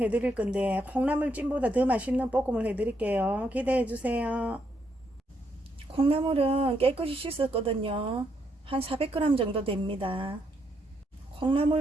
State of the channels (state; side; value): normal; both; correlation 0.76